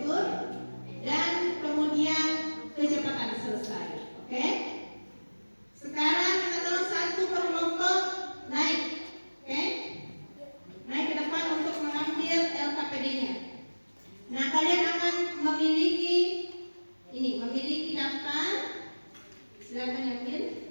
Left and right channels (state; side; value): inverted; both; correlation -1.00